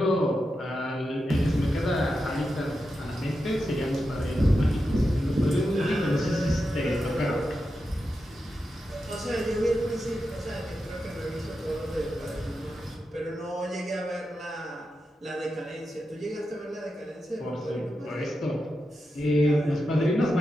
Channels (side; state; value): both; normal; correlation 0.89